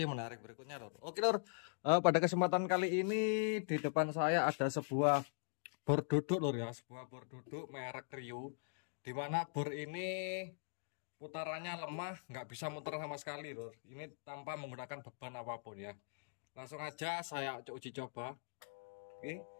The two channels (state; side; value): silent; right; digital silence